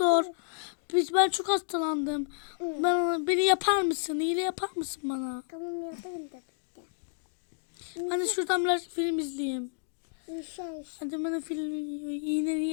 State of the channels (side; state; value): right; silent; digital silence